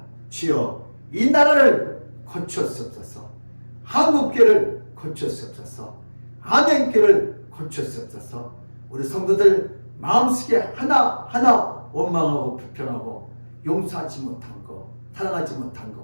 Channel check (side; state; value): both; inverted; correlation -1.00